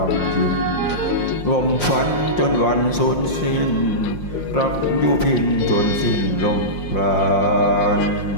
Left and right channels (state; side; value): late; right; 5.6 ms